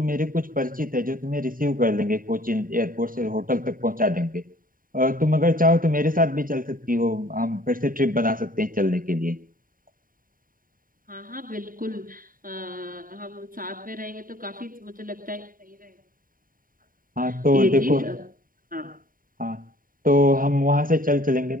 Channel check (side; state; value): left; late; 0.41 ms